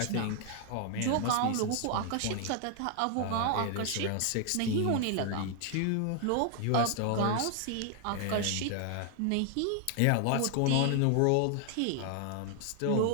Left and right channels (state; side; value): different; both; correlation 0.00